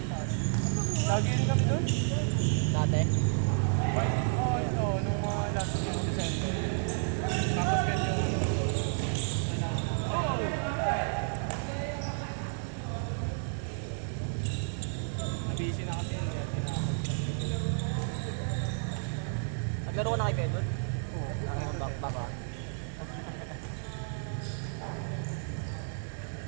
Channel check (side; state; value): left; silent; 57 dB below the other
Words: Lagi rin kami dun? Dati. Oo, ito. Nung mga last year of December. Tapos ganyan yung busy na kasi yun. Naglaro ko na kay Pedro? Oo. Baka.